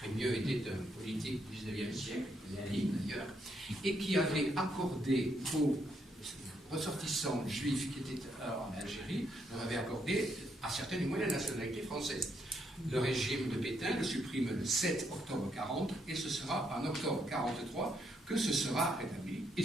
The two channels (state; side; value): normal; both; correlation 0.76